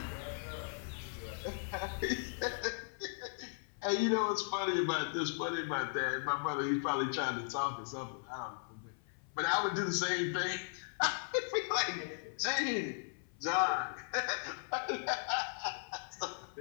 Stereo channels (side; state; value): right; silent; 53 dB below the other